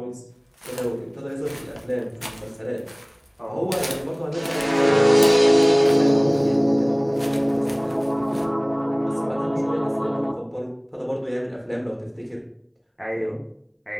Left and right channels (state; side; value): identical; both; correlation 1.00